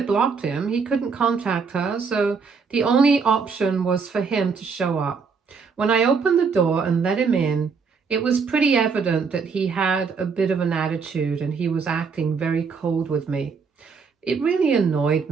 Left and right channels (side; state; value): left; quieter; 5.4 dB